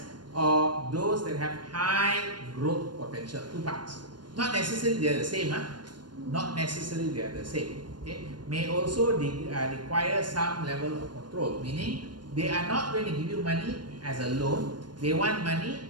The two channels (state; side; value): late; left; 0.71 ms